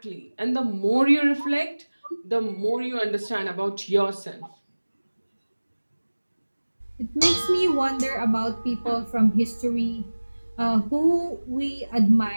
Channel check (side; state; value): both; inverted; correlation -1.00